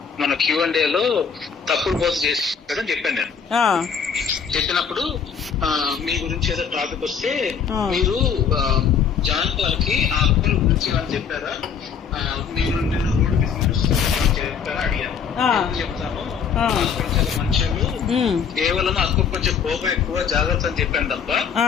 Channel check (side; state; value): right; quieter; 6.8 dB